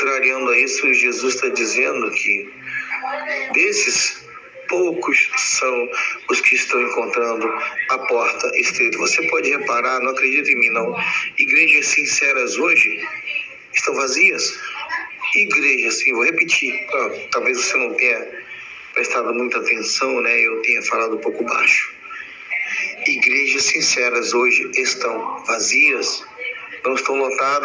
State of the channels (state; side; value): identical; both; correlation 1.00